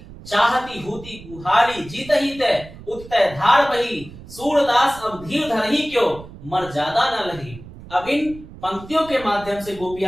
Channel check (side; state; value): right; noise; rumble, 17 dB below the sound